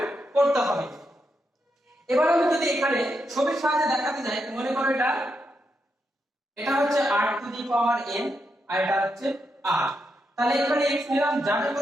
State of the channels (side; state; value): both; normal; correlation 0.83